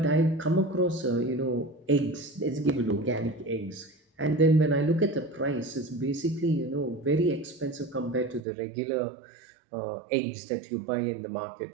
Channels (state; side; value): drops out; left; at 8.4 s